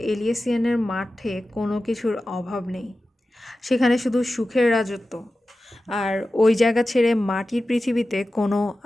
এলিয়েসিয়ানের মাঠে কোনো কিছুর অভাব নেই, সেখানে শুধু সুখের রাজত্ব। আর ওই জায়গা ছেড়ে মাটির পৃথিবীতে কোনো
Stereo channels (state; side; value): normal; both; correlation 0.94